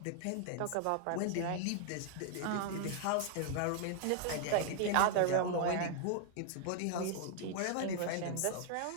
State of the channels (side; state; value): both; different; correlation 0.00